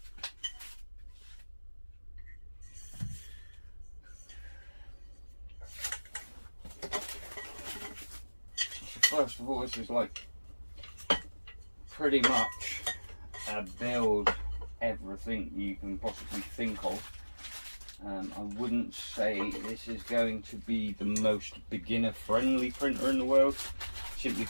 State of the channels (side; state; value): both; inverted; correlation -1.00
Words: First of all, this is like pretty much a build everything you can possibly think of. I wouldn't say this is going to be the most beginner friendly printer in the world, simply